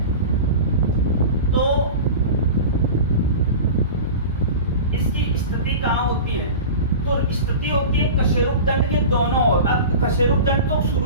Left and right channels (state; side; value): inverted; both; correlation -0.32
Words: तो इसकी स्थिति कहाँ होती है? तो स्थिति होती है कशेरुक दंड के दोनों ओर। अब कशेरुक दंड तो